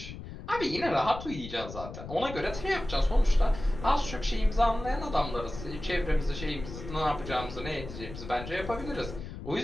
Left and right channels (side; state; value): left; noise; rumble, 11 dB below the sound